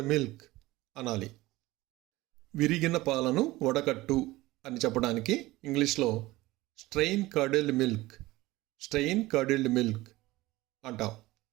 milk అనాలి. విరిగిన పాలను వడకట్టు అని చెప్పడానికి ఇంగ్లీష్లో స్ట్రెయిన్ కార్డిల్డ్ మిల్క్ అంటాం.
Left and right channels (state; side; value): quieter; left; 18.9 dB